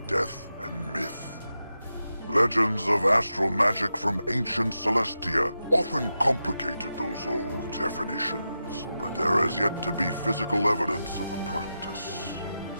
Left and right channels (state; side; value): inverted; both; correlation -0.89